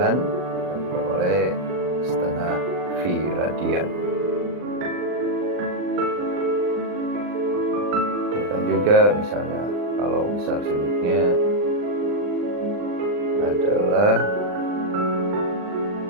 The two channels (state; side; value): late; left; 39 ms